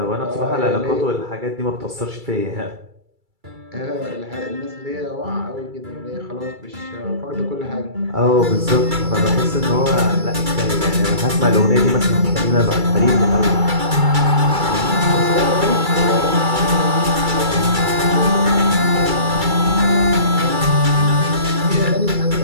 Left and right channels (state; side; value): late; left; 2.3 ms